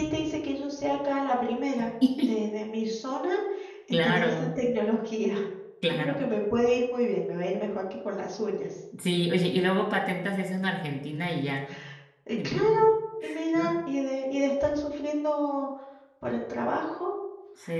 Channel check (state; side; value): identical; both; correlation 1.00